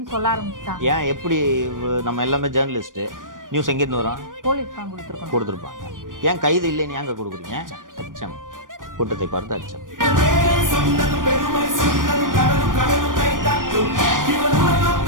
சொல்ல ஆரம்பிச்சிட்டாங்க. ஏன் எப்படி நம்ம எல்லாமே ஜேர்னலிஸ்ட் நியூஸ் எங்கிருந்து வரோம்? போலீஸ் தான் கொடுத்துருப்பாங்க. ஏன் கைது இல்லைன்னு ஏங்க கொடுக்குறீங்க? அச்சம், கூட்டத்தை பார்த்து அச்சம்.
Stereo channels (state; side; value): late; left; 0.89 ms